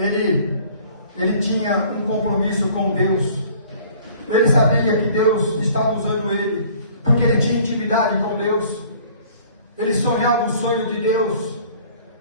tinha um compromisso com Deus. Ele sabia que Deus estava usando ele, porque ele tinha intimidade com Deus. Ele sonhava o sonho de Deus.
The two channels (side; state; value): both; inverted; correlation -0.53